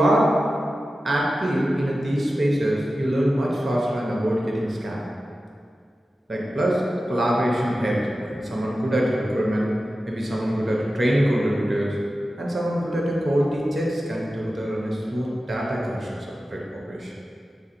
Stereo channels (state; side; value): normal; both; correlation 0.94